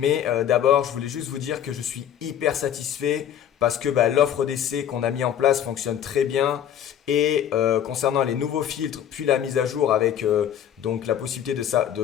d'abord je voulais juste vous dire que je suis hyper satisfait parce que l'offre d'essai qu'on a mis en place fonctionne très bien. Et concernant les nouveaux filtres, puis la mise à jour avec donc la possibilité de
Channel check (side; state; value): right; quieter; 9.9 dB